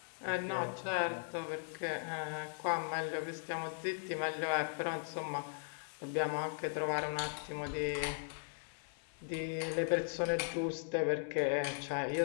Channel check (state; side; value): silent; right; 52 dB below the other